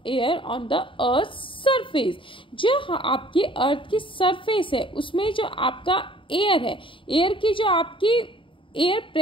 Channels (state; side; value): late; right; 0.25 ms